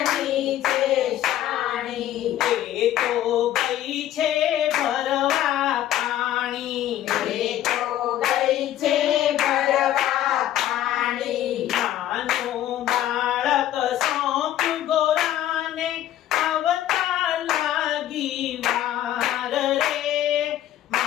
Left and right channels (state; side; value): quieter; right; 12.5 dB